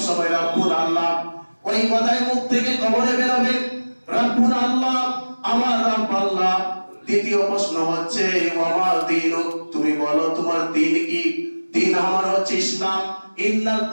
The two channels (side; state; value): both; inverted; correlation -1.00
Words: সময় রাব্বুন আল্লাহ। ওই কথাই মুখ থেকে কবরে বেরোবে, রাব্বুন আল্লাহ, আমার রব আল্লাহ। দ্বিতীয় প্রশ্ন হচ্ছে ওয়া দীনুক, তুমি বলো তোমার দ্বীন কি? দ্বীন আমার হচ্ছে ইসলাম। ইন্নাদ